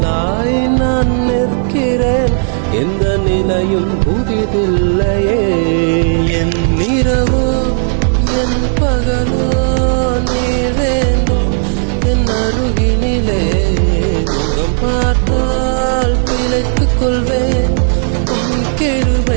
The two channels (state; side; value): silent; left; 70 dB below the other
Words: நான் நிற்கிறேன், எந்த நிலையும் புதிதில்லையே. என் இரவோ என் பகலோ நீ வேண்டும் என் அருகினிலே. முகம் பார்த்தால் பிழைத்துக் கொள்வேன், உன்